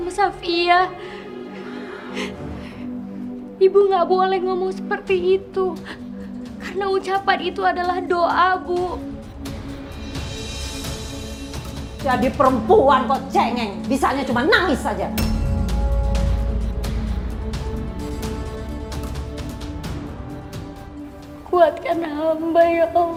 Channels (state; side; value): identical; both; correlation 1.00